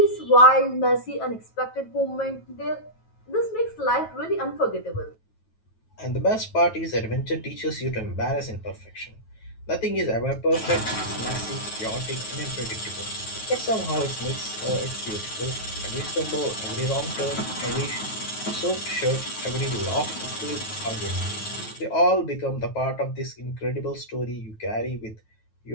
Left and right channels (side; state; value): right; late; 9.2 ms